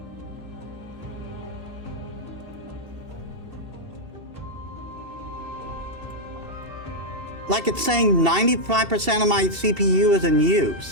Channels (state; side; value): late; left; 2.7 ms